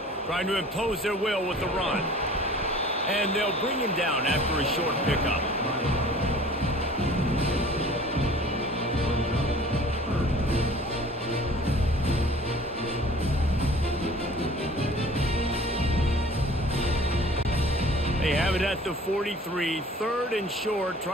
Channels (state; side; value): normal; both; correlation 0.47